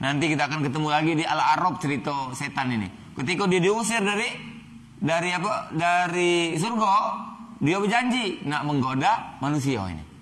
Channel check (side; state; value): both; identical; correlation 1.00